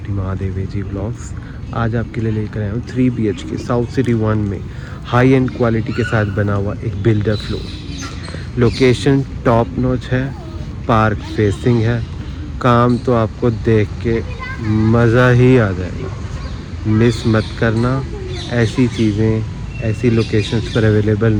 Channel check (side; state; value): both; identical; correlation 1.00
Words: Mahadev ji vlogs. आज आपके लिए लेकर आया हूँ 3 BHK साउथ सिटी 1 में हाई एंड क्वालिटी के साथ बना हुआ एक builder floor. Location top notch है, पार्क फेसिंग है, काम तो आपको देख के मज़ा ही आ जाएगा। मिस मत करना, ऐसी चीज़ें ऐसी लोकेशंस पर अवेलेबल